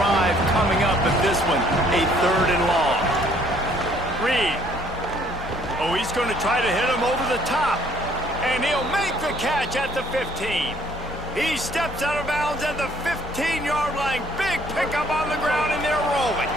coming up at this one, a 3rd and long. Reed. Oh, he's going to try to hit him over the top. And he'll make the catch at the 15. He steps out of bounds at the 15-yard line. Big pickup on the ground, and they're rolling.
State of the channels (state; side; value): normal; both; correlation 0.62